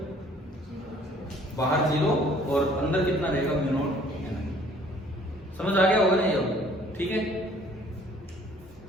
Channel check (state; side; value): normal; both; correlation 0.57